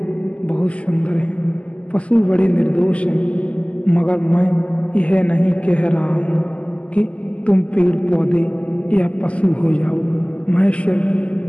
बहुत सुंदर हैं, पशु बड़े निर्दोष हैं, मगर मैं यह नहीं कह रहा हूँ कि तुम पेड़ पौधे या पशु हो जाओ। मैं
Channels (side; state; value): right; late; 0.059 ms